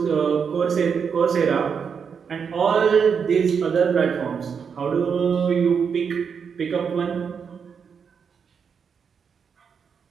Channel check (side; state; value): left; quieter; 6.5 dB